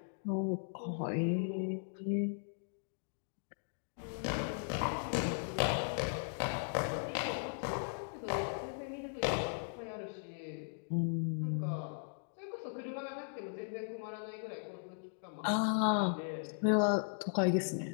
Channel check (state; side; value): silent; right; digital silence